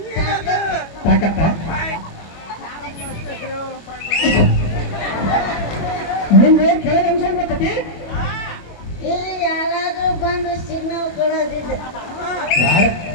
ತಾಕತ್ತ ನಿಮ್ಗೆ ಕೆಳಗೆ ಅಂಶ ಗೊತ್ತತಿ ಇಲ್ಲಿ ಯಾರಾದ್ರೂ ಬಂದು ಸಿಗ್ನಲ್ ಕೊಡೋದಿಲ್ಲ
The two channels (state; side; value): late; right; 25 ms